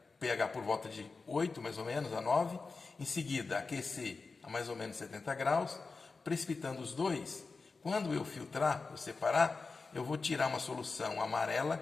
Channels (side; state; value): right; quieter; 4.2 dB